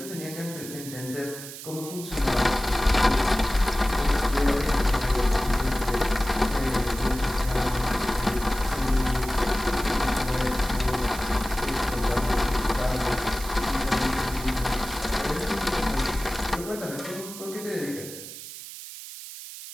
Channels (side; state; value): right; noise; hiss, 12 dB below the sound